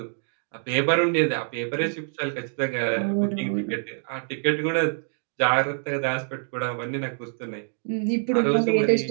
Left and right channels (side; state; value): left; silent; digital silence